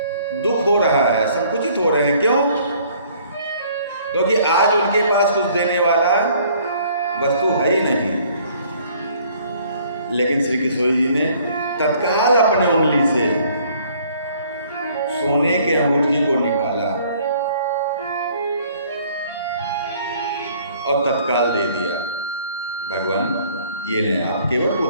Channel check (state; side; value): inverted; both; correlation -0.59